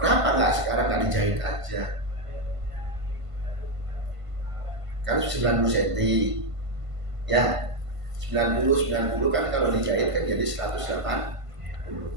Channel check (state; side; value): late; left; 1.5 ms